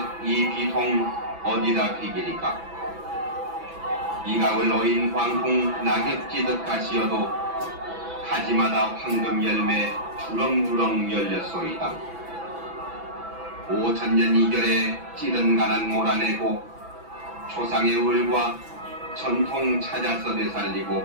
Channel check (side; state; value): left; late; 6.0 ms